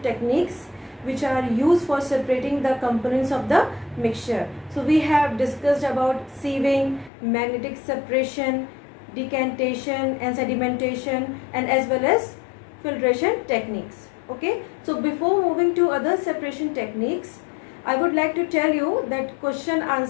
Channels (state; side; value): drops out; right; at 7.1 s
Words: techniques which are used for separating the components of the mixture. So we have discussed about sieving, magnetic separation, decantation and sedimentation, and as well as filtration techniques. Okay, so before moving to other separation techniques, I would like to tell you that question